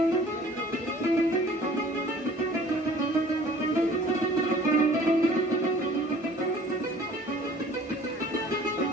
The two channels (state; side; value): normal; both; correlation 0.51